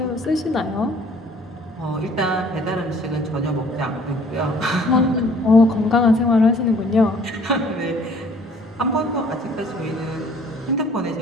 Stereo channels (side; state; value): both; normal; correlation 0.55